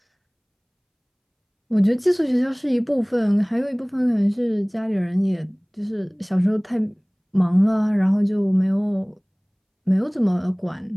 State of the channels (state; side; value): identical; both; correlation 1.00